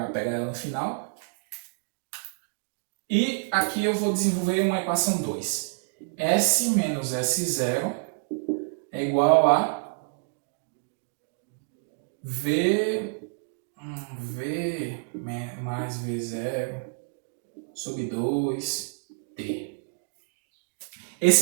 pegar ela no final. E aqui eu vou desenvolver uma equação 2. S menos S0 é igual a V mais V0 sobre 2T.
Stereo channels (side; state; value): left; silent; digital silence